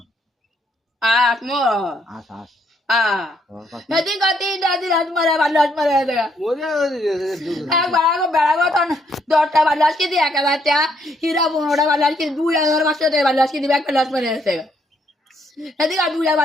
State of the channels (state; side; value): normal; both; correlation 0.72